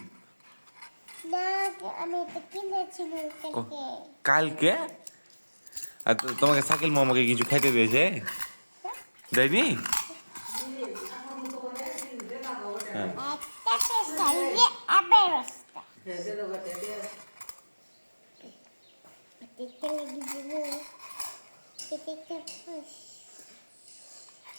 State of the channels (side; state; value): both; inverted; correlation -1.00